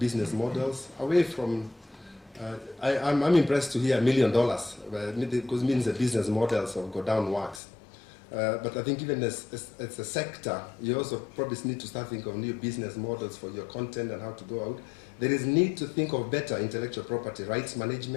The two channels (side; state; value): right; drops out; at 7.6 s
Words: models away from, I'm impressed to hear $1 million, because it means the business models of go down works. But I think even as a sector, you also probably need to start thinking of new business models for your content and how to go out. There is need to think of better intellectual property rights